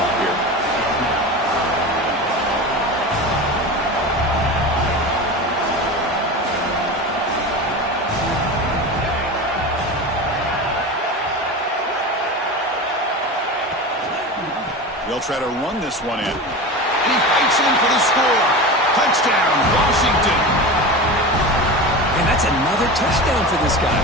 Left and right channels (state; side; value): normal; both; correlation 0.28